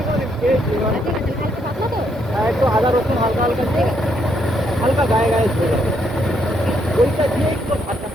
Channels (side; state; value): both; normal; correlation 0.74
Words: একটু আদা রসুন হালকা হালকা দিয়ে হালকা গায়ে গায়ে ধরে যাবে, ওইটা দিয়ে একটু ভাতটা